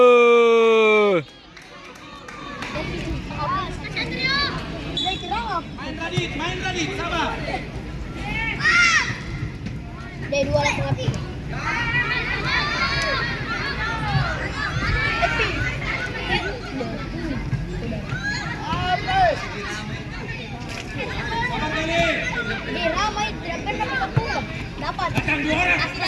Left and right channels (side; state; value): both; identical; correlation 1.00